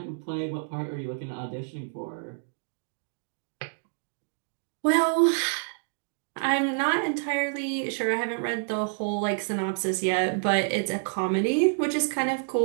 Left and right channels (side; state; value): left; silent; digital silence